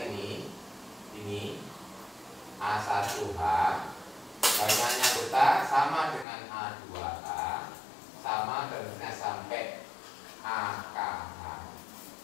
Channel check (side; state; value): right; drops out; at 6.2 s